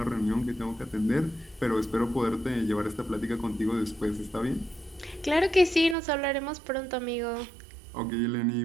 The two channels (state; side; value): drops out; left; at 6.0 s